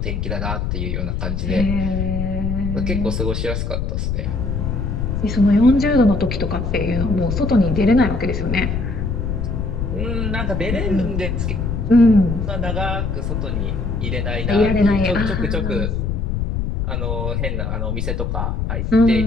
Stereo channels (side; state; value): left; noise; rumble, 1 dB below the sound